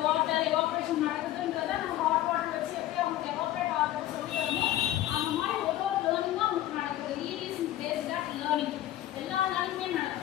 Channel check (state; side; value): quieter; right; 13.8 dB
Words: வாட்டர் எவாப்ரேஷன் நடக்குதுன்றத நம்ம ஹாட் வாட்டர் வச்சு எப்படி அவங்க எவாப்ரேட் ஆகுறது சொல்லி தரணும். அந்த மாதிரி ஒவ்வொரு லேர்னிங்கும் அவங்களுக்கு நடக்குது. Is based at learning. எல்லா லேர்னிங்குமே